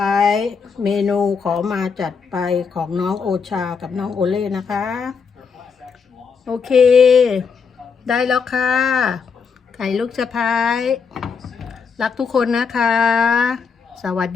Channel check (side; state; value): right; quieter; 5.8 dB